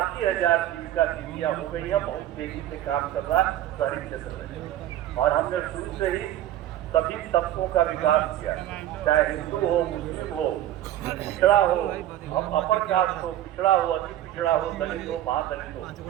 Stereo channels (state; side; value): quieter; left; 12.9 dB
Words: जीविका दीदियाँ हो गई है। बहुत तेजी से काम कर रहा है शहरी क्षेत्र में। और हमने शुरू से ही सभी तबकों का विकास किया, चाहे हिंदू हो, मुस्लिम हो, पिछड़ा हो, अपर कास्ट हो, पिछड़ा हो, अति पिछड़ा हो, दलित हो, महादलित हो,